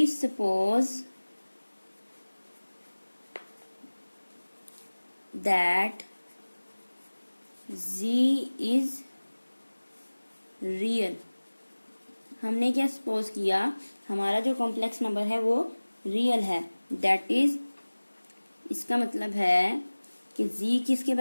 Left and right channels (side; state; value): both; inverted; correlation -1.00